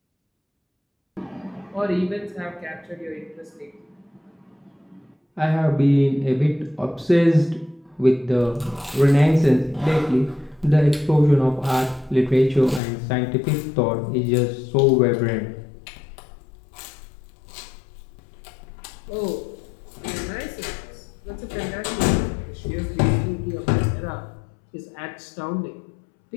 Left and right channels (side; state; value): right; drops out; at 12.8 s